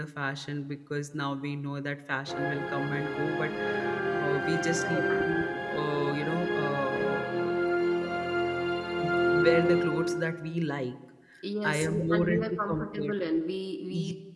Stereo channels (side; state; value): both; identical; correlation 1.00